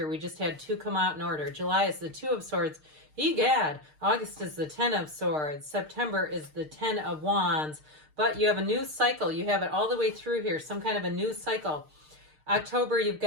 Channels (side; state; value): left; late; 6.5 ms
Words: We just had 2 come out in order. July is the Two of Swords. Egad. August is the 10 of Swords. September is the 10 of Wands. But you have a new cycle. You have it all the way through here, some kind of a new cycle. October, you've